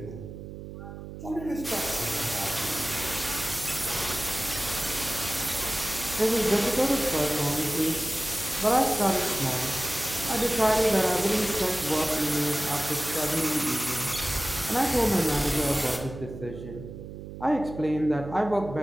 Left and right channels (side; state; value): right; noise; hum, 11 dB below the sound